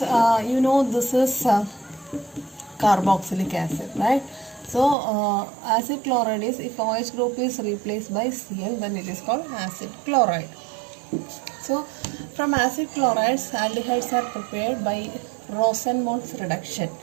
is carboxylic acid, right? So acid chloride is, if OH group is replaced by Cl, then it is called acid chloride. So from acid chlorides, aldehydes are prepared by Rosenmund's reduction.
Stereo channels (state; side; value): drops out; left; at 5.0 s